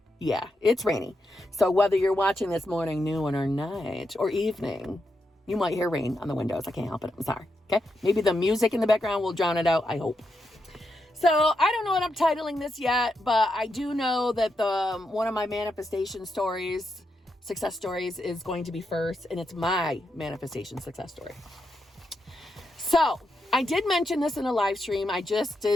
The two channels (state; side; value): normal; both; correlation 0.84